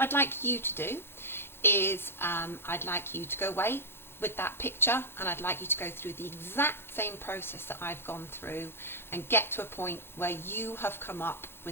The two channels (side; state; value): right; late; 0.11 ms